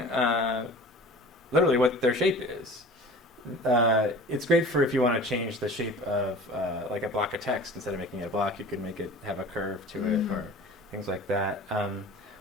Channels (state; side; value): normal; both; correlation 0.41